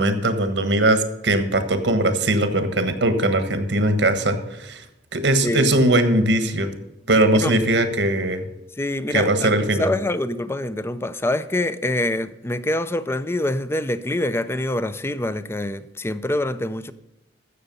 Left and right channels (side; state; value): both; normal; correlation 0.37